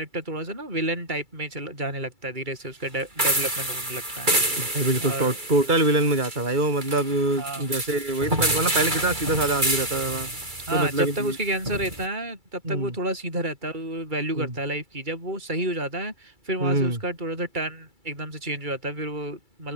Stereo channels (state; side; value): late; left; 2.3 ms